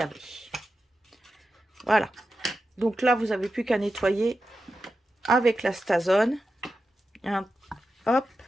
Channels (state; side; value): normal; both; correlation 0.91